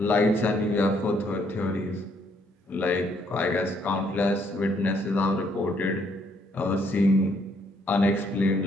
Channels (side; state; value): both; normal; correlation 0.69